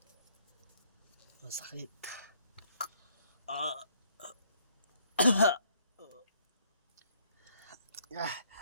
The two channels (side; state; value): both; inverted; correlation -0.66